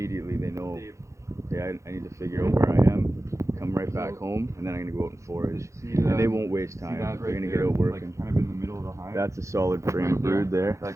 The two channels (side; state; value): left; late; 0.15 ms